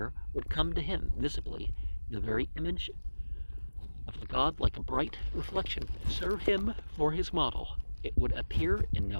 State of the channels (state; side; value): inverted; both; correlation -1.00